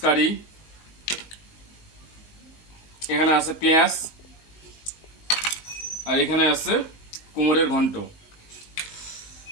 curry. এখানে আছে পেঁয়াজ আর এখানে আছে কুমড়ের ঘন্ট।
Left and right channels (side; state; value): right; late; 19 ms